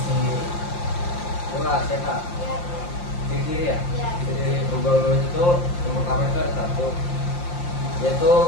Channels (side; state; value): right; late; 5.7 ms